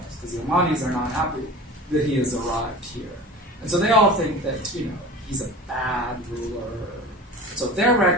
because the Omanis are not happy that he has arrived here. And so they all think that, he's a bad ruler. So their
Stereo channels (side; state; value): both; normal; correlation 0.36